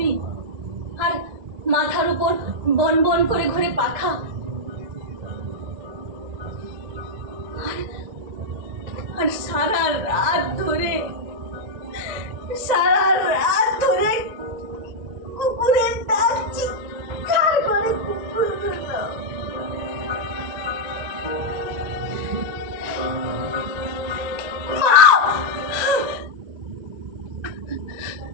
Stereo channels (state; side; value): late; left; 1.9 ms